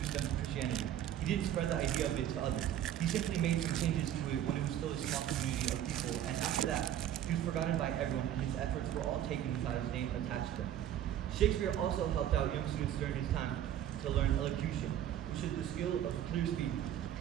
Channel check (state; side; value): quieter; left; 11.1 dB